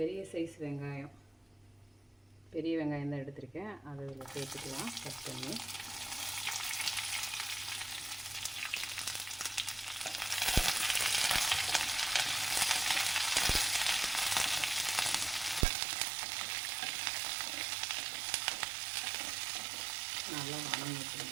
சைஸ் வெங்காயம், பெரிய வெங்காயம் தான் எடுத்திருக்கேன். அதை இதில் சேர்த்துக்கலாம் கட் பண்ணி. நல்லா வதங்கிட்டு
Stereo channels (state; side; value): drops out; left; at 15.7 s